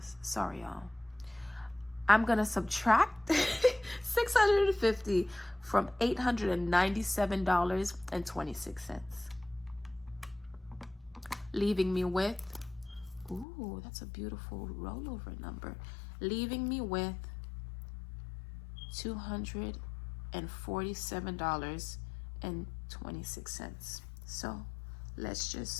Sorry, y'all. I'm gonna subtract $650 from $897.26, leaving me with, ooh, that's a beautiful rollover number, leaving me with $247.26. So let's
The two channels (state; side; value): drops out; right; at 13.5 s